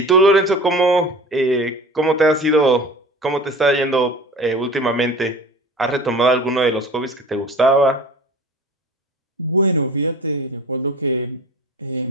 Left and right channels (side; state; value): both; normal; correlation 0.39